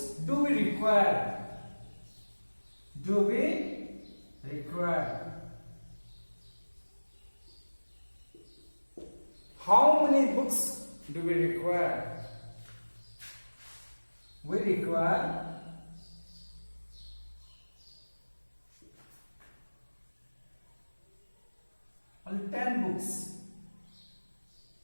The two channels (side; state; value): both; inverted; correlation -1.00